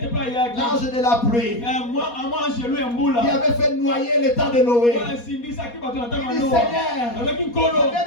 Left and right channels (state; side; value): late; right; 4.2 ms